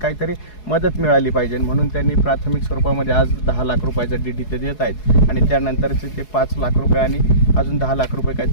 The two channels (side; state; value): right; late; 4.7 ms